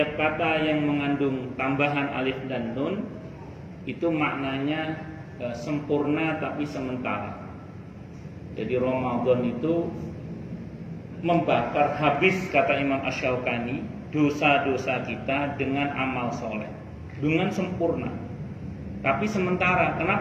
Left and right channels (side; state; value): both; identical; correlation 1.00